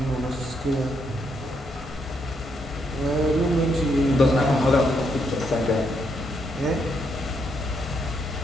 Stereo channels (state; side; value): normal; both; correlation 0.76